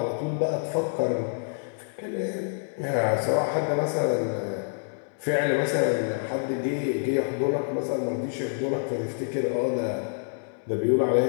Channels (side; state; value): right; silent; 59 dB below the other